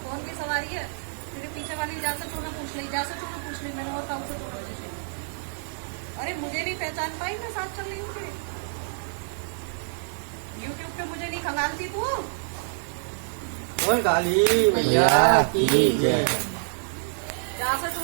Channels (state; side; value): silent; left; digital silence